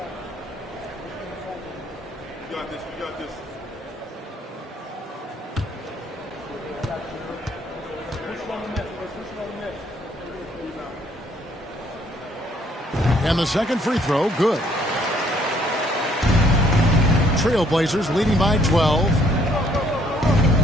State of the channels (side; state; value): both; normal; correlation 0.65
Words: And the second free throw, good. Trailblazers leading by 12.